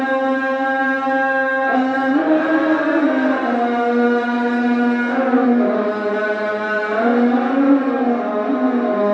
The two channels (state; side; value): identical; both; correlation 1.00